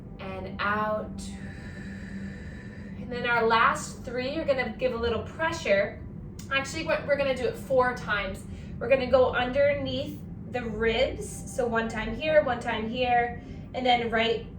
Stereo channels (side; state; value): both; identical; correlation 1.00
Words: And out. And then our last 3, you're gonna give a little pressure. Actually, we're gonna do it 4 times. We're gonna go underneath the ribs. So 1 time here, 1 time here, and then right